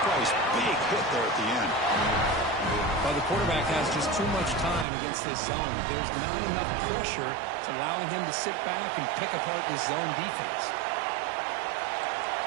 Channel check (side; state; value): left; drops out; at 4.9 s